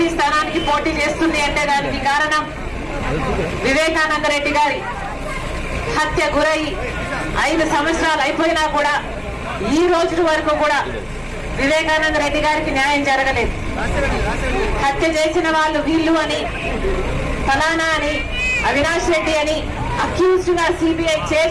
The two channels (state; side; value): identical; both; correlation 1.00